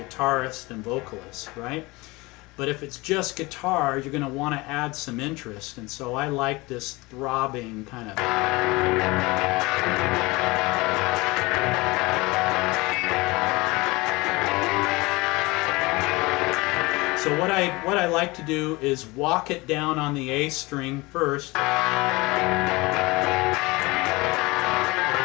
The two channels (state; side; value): quieter; right; 23.0 dB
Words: and vocalist, right? But if it's just guitar, you're going to want to add some interest, and so I like this throbbing kind of. So what I like to do is walk it down on the A string first. So